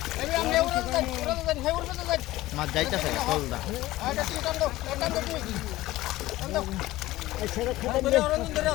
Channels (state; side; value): quieter; right; 17.1 dB